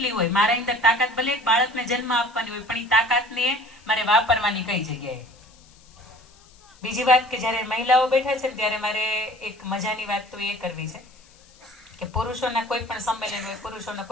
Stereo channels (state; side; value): noise; left; hiss, 28 dB below the sound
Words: હોય, મારા અંદર તાકાત ભલે એક બાળકને જન્મ આપવાની હોય, પણ એ તાકાતને મારે વાપરવાની કઈ જગ્યાએ. બીજી વાત કે જયારે મહિલાઓ બેઠા છે ત્યારે મારે એક મજાની વાત તો એ કરવી છે કે પુરુષોના કોઈ પણ સંમેલન હોય, પુરુષોના